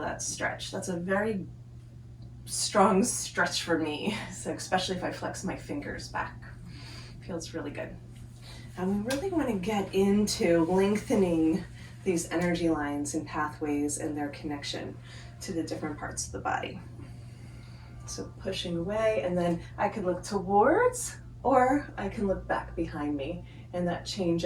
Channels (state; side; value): identical; both; correlation 1.00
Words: that stretch. That's a very strong stretch for me, so especially if I flex my fingers back. Feels really good. And we really want to get into lengthening these energy lines and pathways and their connection to the different parts of the body. So pushing away, and then I can look towards, or I can look back behind me, and that